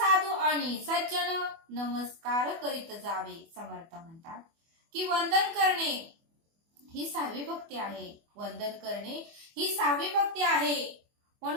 आणि सज्जन नमस्कार करीत जावे. समर्थ म्हणतात की वंदन करणे ही सहावी भक्ती आहे. वंदन करणे ही सहावी भक्ती आहे.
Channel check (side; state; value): left; late; 24 ms